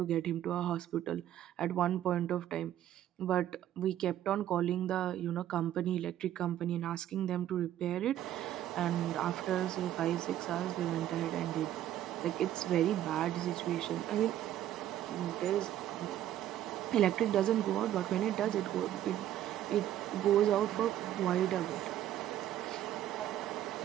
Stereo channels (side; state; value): left; quieter; 12.1 dB